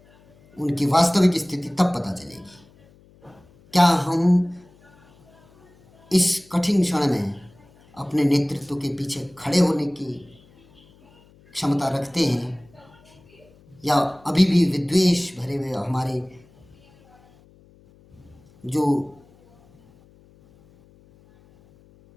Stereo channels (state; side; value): noise; left; hum, 29 dB below the sound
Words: उनकी वास्तविक स्थिति तब पता चलेगी। क्या हम इस कठिन क्षण में अपने नेतृत्व के पीछे खड़े होने की क्षमता रखते हैं, या अभी भी विद्वेष भरे हुए हमारे जो